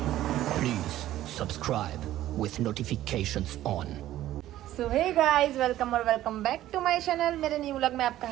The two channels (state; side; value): quieter; left; 13.8 dB